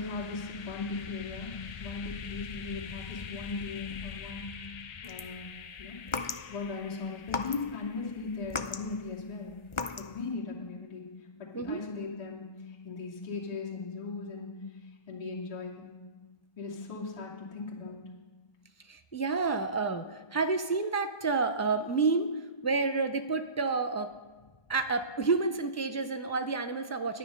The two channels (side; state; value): right; late; 1.4 ms